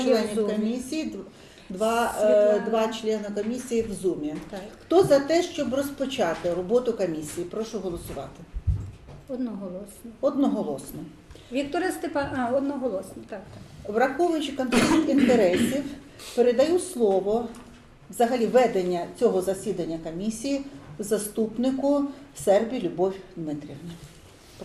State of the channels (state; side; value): identical; both; correlation 1.00